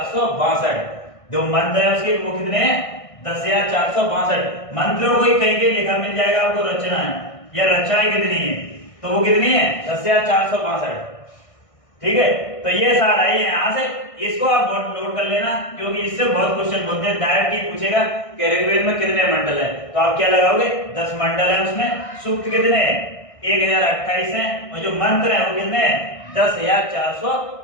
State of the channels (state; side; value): late; right; 1.6 ms